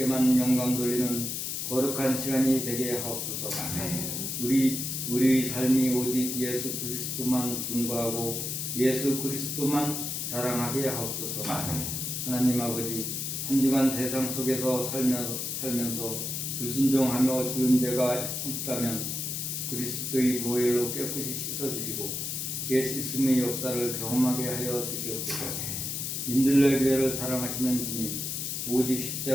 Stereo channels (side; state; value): left; noise; hiss, 3 dB below the sound